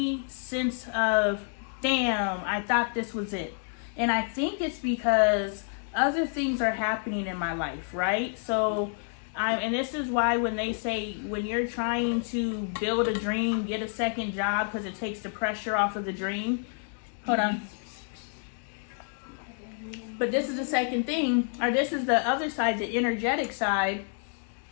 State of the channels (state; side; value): silent; right; 59 dB below the other